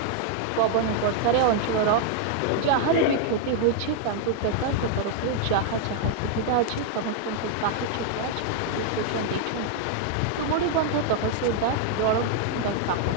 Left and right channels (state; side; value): different; both; correlation 0.00